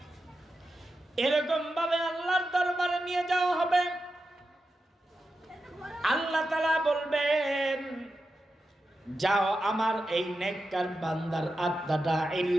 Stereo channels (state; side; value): normal; both; correlation 0.90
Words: এরকম ভাবে আল্লাহর দরবারে নিয়ে যাওয়া হবে। আল্লাহ তাআলা বলবেন, যাও আমার এই নেককার বান্দার আত্মাটা